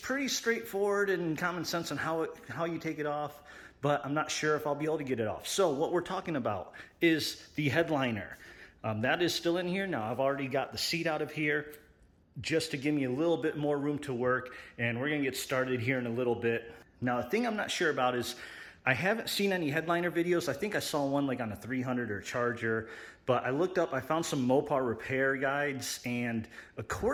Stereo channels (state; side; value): identical; both; correlation 1.00